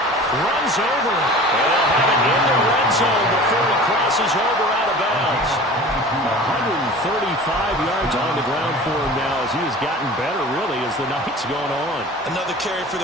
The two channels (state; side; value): normal; both; correlation 0.40